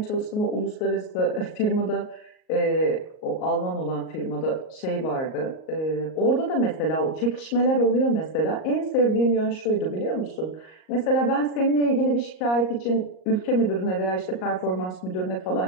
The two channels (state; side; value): late; right; 38 ms